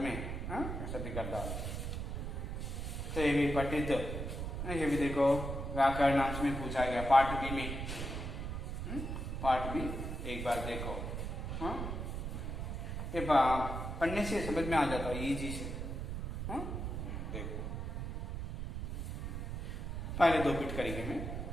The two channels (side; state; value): right; noise; rumble, 4 dB below the sound